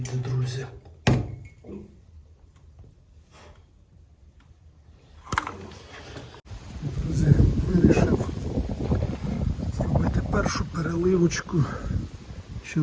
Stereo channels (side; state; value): both; identical; correlation 1.00